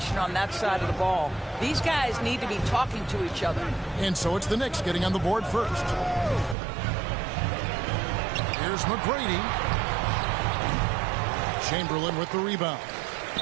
on that side of the ball. These guys need to be talking to each other. And so it's the Knicks getting on the board first. Here's McGrady. Chamberlain with the rebound.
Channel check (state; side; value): drops out; left; at 6.6 s